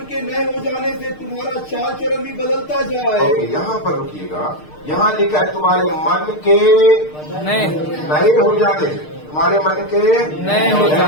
के नए हो जाने से तुम्हारा चाल चलन भी बदलता जाए। ओके, यहाँ पर रुकिएगा। यहाँ लिखा है तुम्हारे मन के नहीं नए हो जाने से, तुम्हारे मन के नए हो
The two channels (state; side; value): late; right; 6.6 ms